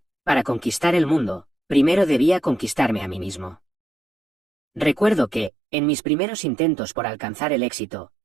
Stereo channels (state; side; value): drops out; left; at 5.5 s